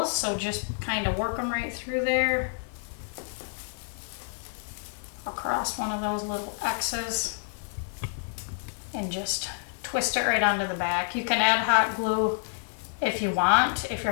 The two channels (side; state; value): right; silent; 57 dB below the other